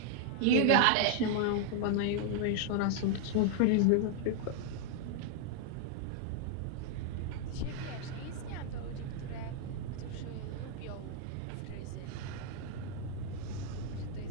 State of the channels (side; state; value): both; different; correlation 0.00